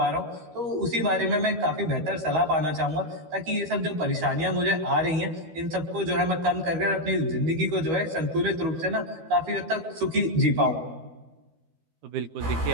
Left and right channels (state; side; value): late; left; 12 ms